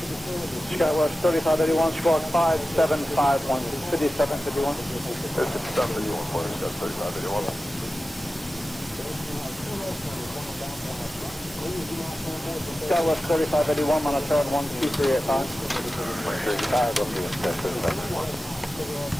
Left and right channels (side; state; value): both; normal; correlation 0.94